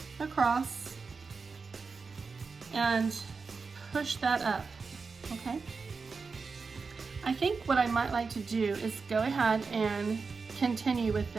across and push that up, okay? I think what I might like to do is go ahead and continue with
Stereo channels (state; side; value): quieter; left; 4.7 dB